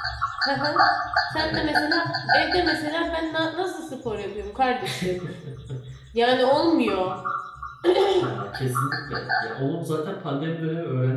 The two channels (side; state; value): both; identical; correlation 1.00